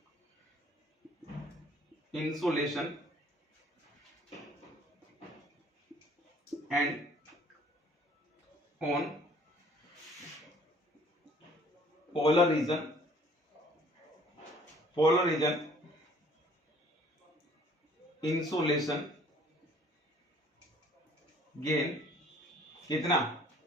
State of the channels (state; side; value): normal; both; correlation 0.56